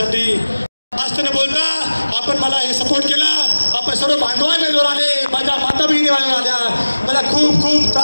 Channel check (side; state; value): both; inverted; correlation -1.00